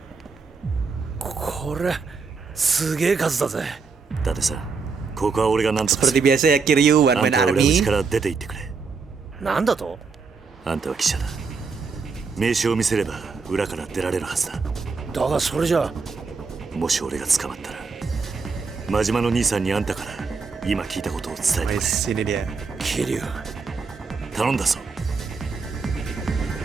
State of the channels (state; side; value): quieter; left; 4.8 dB